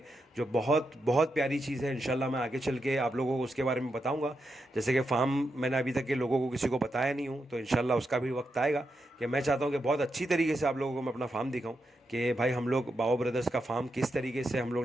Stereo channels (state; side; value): normal; both; correlation 0.85